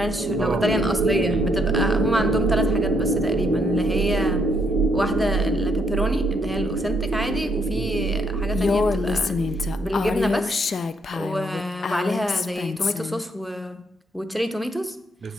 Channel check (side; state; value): both; normal; correlation 0.73